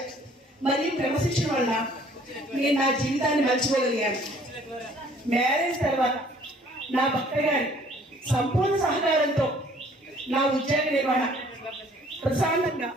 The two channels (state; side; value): normal; both; correlation 0.57